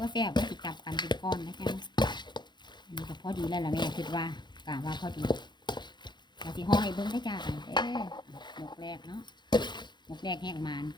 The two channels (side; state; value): right; late; 0.21 ms